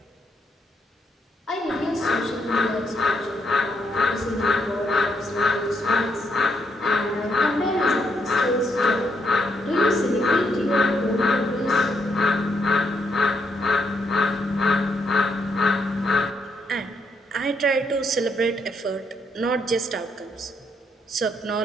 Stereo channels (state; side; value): normal; both; correlation 0.76